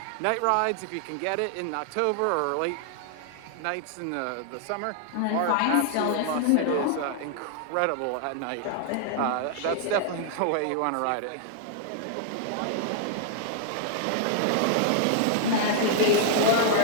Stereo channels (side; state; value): both; different; correlation 0.00